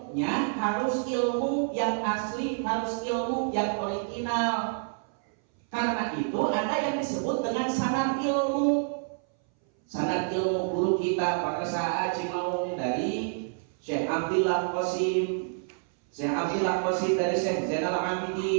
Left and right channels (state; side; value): silent; left; 59 dB below the other